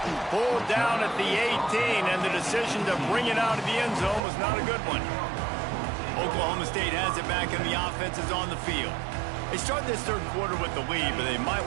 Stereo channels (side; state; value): left; drops out; at 4.2 s